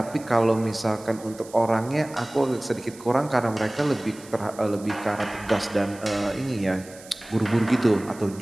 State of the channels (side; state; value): right; noise; hiss, 20 dB below the sound